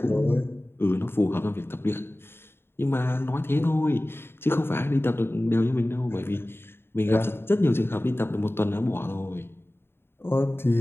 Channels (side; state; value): right; late; 0.11 ms